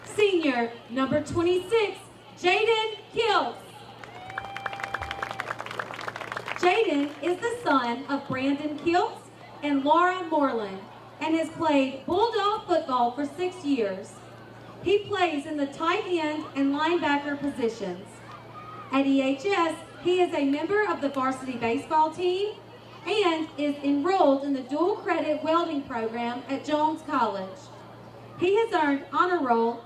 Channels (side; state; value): both; identical; correlation 1.00